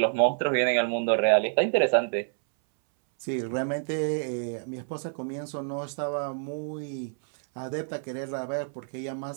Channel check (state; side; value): silent; left; 59 dB below the other